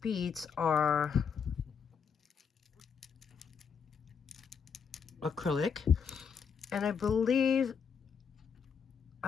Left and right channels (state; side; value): quieter; right; 6.6 dB